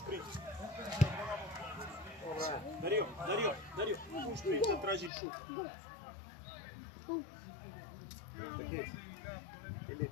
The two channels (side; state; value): right; drops out; at 5.1 s